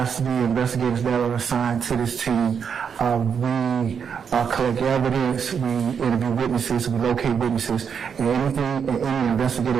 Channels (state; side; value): quieter; left; 7.0 dB